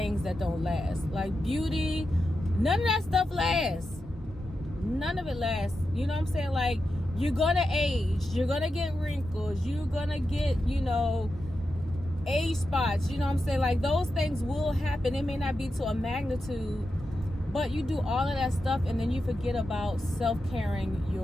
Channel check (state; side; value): normal; both; correlation 0.89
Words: that don't last. Like beauty, none of that stuff lasts. None of it lasts. You know what I'm saying? Like, you're gonna age, you're gonna get wrinkles, you're gonna get, age spots. You know what I'm saying? Like, those things will happen. It may not be to a magnitude, but you do all of that stuff and then you forget about self-caring